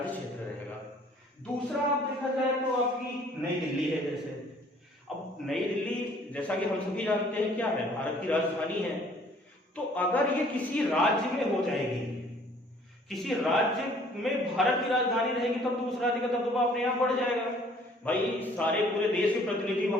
क्षेत्र रहेगा। दूसरा आप देखा जाए तो आपकी नई दिल्ली है। जैसे अब नई दिल्ली जैसा कि हम सभी जानते हैं क्या है, भारत की राजधानी है, तो अगर ये किसी राज्य में हो जाएगी, किसी राज्य में भारत की राजधानी रहेगी, तब तो उस राज्य का दबदबा अपने आप बढ़ जाएगा। भाई सारे पूरे देश के प्रतिनिधि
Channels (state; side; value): normal; both; correlation 0.57